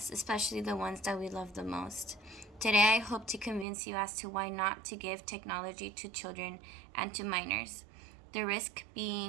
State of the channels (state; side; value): drops out; left; at 3.7 s